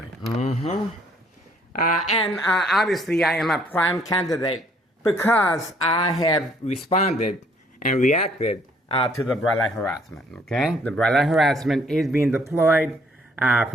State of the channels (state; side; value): normal; both; correlation 0.63